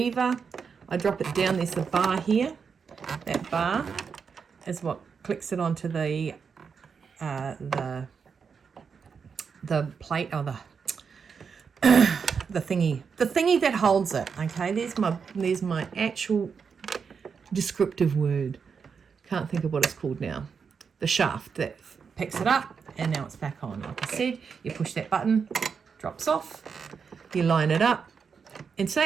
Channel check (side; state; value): left; quieter; 6.0 dB